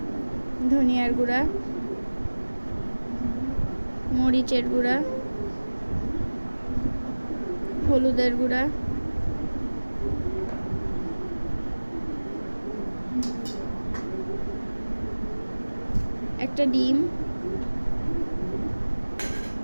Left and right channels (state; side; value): inverted; both; correlation -1.00